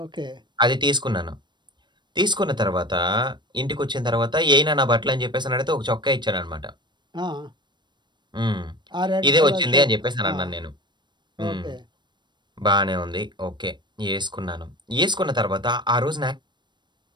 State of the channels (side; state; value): left; late; 0.22 ms